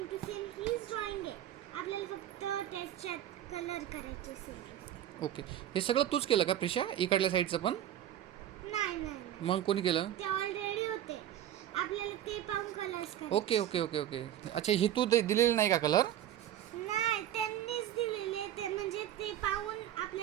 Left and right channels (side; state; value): left; quieter; 11.7 dB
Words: टू सेम हीच ड्रॉइंग आहे. आपल्याला फक्त त्याच्यात कलर करायचे सेम. ओके, हे सगळं तूच केलं का प्रिशा? इकडल्या साईडचं पण? नाही नाही, मग कोणी केलं? ते ऑलरेडी होते. आपल्याला ते पाहून कलर्स करायचे. Okay okay okay okay. अच्छा, ही तू दिलेली नाही का कलर? नाही, त्यांनीच दिलेले. ते म्हणजे ते पाहून